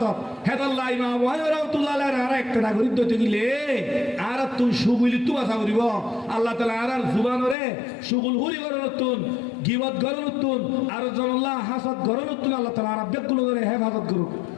হেদাল্লাহ ইমাম আবু হানিফা রাহমাতুল্লাহ আর একটা করি তো দিলে আর তুই সুগুলি তু আশা করিব আল্লাহ তাআলা আর জুবানরে সুগুল হুরি করনতুন গিবত করনতুন আর জনাল্লাহ হাসাদ করনতুন আল্লাহ তাআলা আর বেগুলো করে হেফাজত করুক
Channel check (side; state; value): right; drops out; at 7.6 s